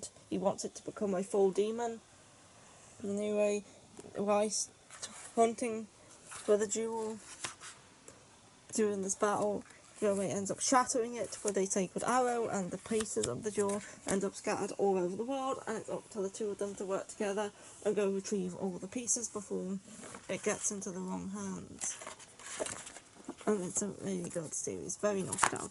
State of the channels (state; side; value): identical; both; correlation 1.00